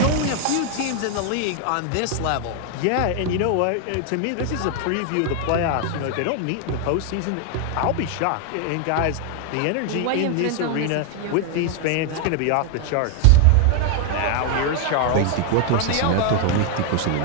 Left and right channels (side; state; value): both; different; correlation 0.01